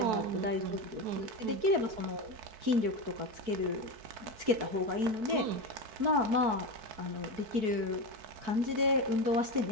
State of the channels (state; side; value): late; left; 4.6 ms